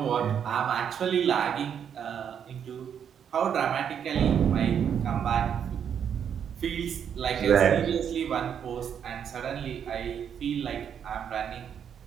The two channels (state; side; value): quieter; left; 8.2 dB